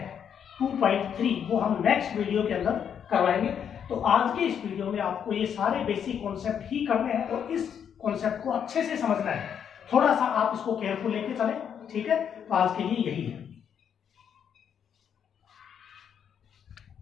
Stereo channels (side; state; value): right; quieter; 8.2 dB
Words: 2.3 वो हम नेक्स्ट वीडियो के अंदर करवाएंगे। तो आज के इस वीडियो में आपको ये सारे बेसिक कॉन्सेप्ट ही करने हैं और इस कॉन्सेप्ट को अच्छे से समझना है। थोड़ा सा आप इसको केयरफुल लेके चलें, ठीक है। तो आज के लिए यही है।